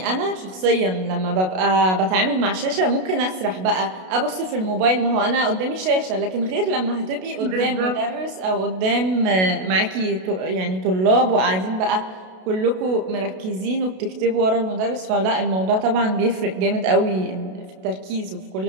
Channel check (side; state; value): left; late; 32 ms